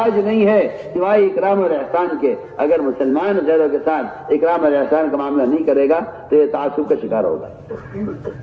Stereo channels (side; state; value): both; identical; correlation 1.00